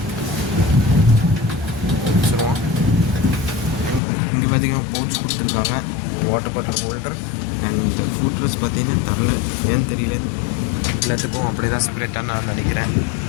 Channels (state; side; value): drops out; right; at 4.0 s